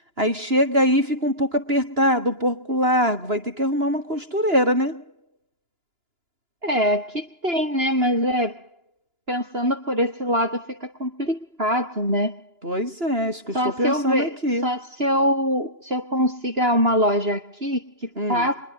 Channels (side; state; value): left; late; 2.9 ms